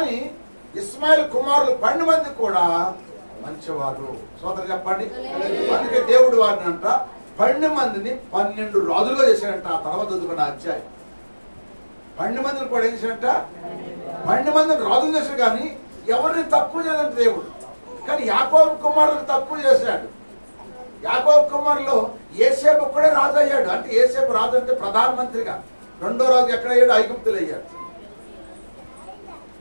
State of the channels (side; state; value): both; inverted; correlation -1.00